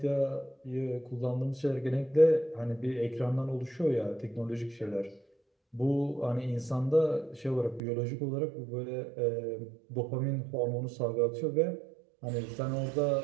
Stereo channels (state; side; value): drops out; left; at 7.8 s